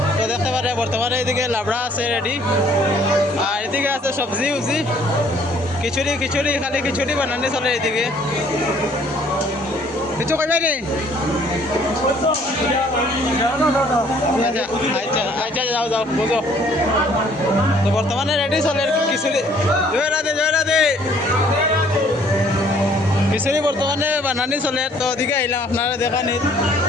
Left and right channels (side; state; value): both; normal; correlation 0.60